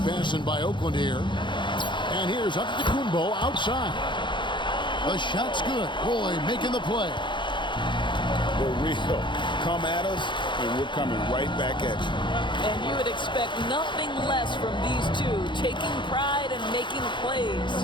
by Oakland here. And here's Antetokounmpo outside. The shot's good. Roy making the play. For real. Come at us, and we're coming right back at you. And you would expect nothing less from these two, taking pride and making plays.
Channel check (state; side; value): late; right; 0.23 ms